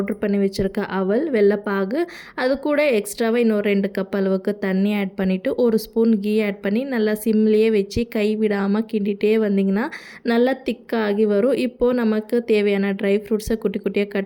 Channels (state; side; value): identical; both; correlation 1.00